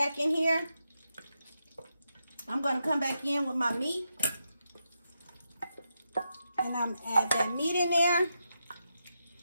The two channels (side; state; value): both; inverted; correlation -0.85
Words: in here, I'm gonna come back in with my meat. And I'm add that meat in there.